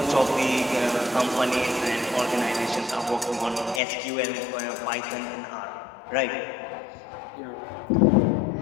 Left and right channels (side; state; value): right; drops out; at 3.8 s